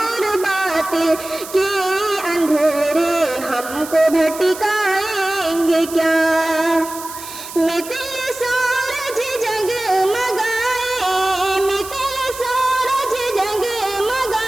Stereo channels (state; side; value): noise; right; hiss, 13 dB below the sound